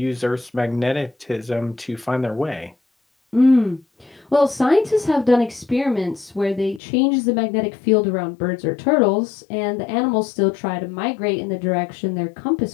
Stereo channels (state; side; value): drops out; right; at 6.8 s